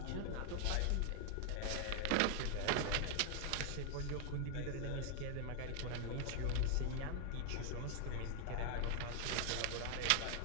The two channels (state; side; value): different; both; correlation 0.00